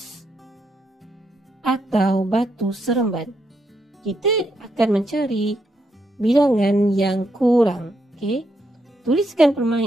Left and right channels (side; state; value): both; normal; correlation 0.79